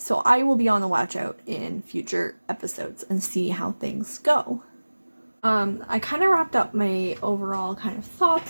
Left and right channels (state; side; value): inverted; both; correlation -1.00